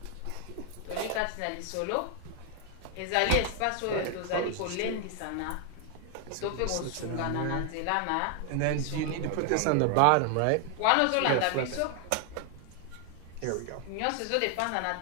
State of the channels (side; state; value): both; different; correlation 0.00